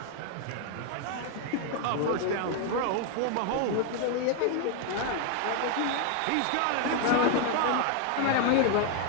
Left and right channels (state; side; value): different; both; correlation 0.00